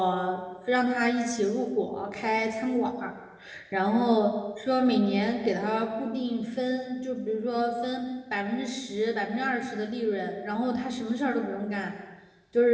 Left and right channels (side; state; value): both; identical; correlation 1.00